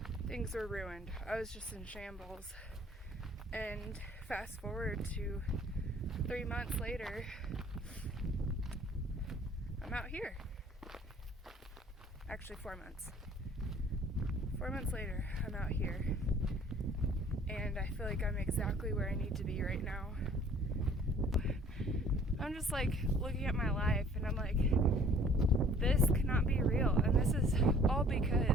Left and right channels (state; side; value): normal; both; correlation 0.54